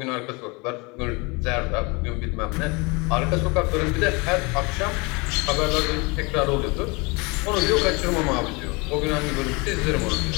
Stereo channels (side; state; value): right; quieter; 27.9 dB